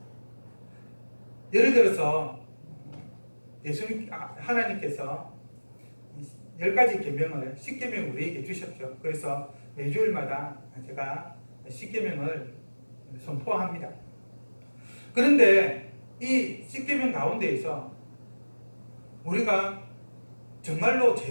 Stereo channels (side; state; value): both; inverted; correlation -1.00